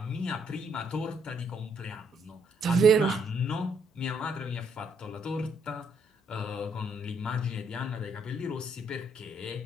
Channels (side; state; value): both; normal; correlation 0.71